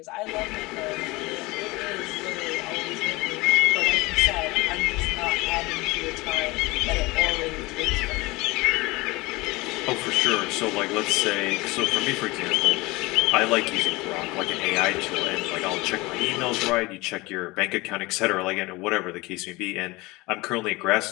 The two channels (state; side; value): quieter; right; 22.5 dB